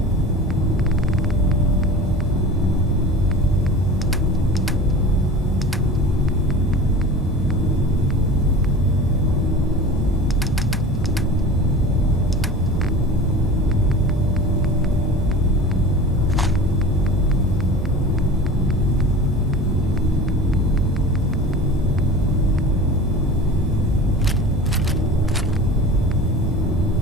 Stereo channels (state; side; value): normal; both; correlation 0.36